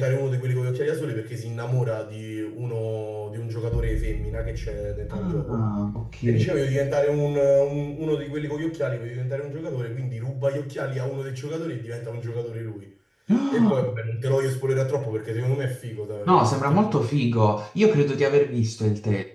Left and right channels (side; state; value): both; identical; correlation 1.00